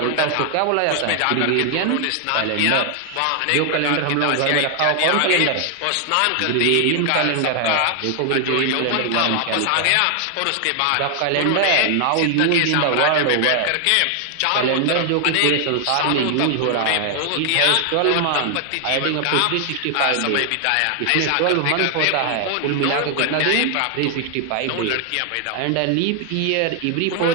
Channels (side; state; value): both; different; correlation 0.00